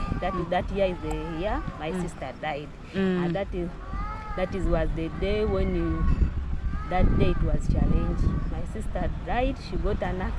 that year is the year my sister died. And that was the day when that day it was challenging. My sister died, she got an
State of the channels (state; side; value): identical; both; correlation 1.00